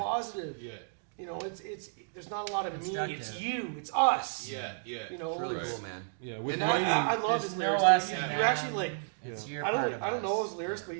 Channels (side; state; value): left; silent; digital silence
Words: positive. Yeah. You know, it's there's not a lot of me. It's Constructive. you. It's us. Yeah. Yeah. You know, It's really it's- cool, man. Yeah, with and writing. I love There's his no lyrics. us dude. and You actually them. like. It's Yeah. your I part don't of know us. his lyrics, Yeah. but